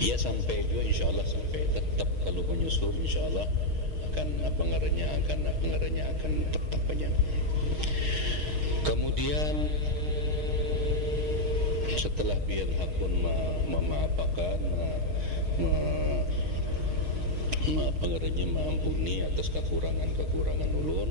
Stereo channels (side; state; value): left; late; 6.4 ms